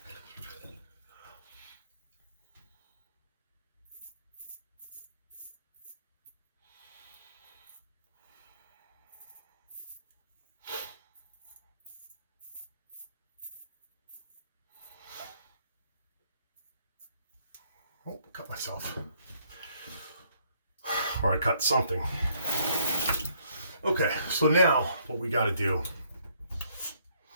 Oh, cut myself. Or I cut something. Okay, so now what we got to do,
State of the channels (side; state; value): both; inverted; correlation -0.68